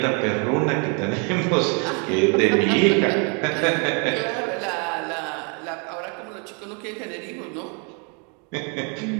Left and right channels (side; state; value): left; quieter; 35.9 dB